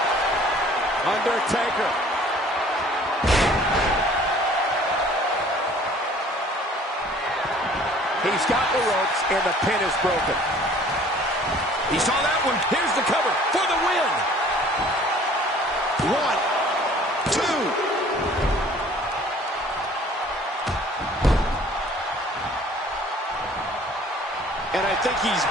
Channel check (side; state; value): both; normal; correlation 0.52